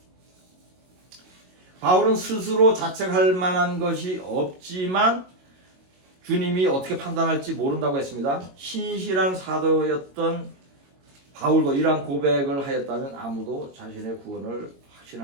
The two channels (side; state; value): left; late; 22 ms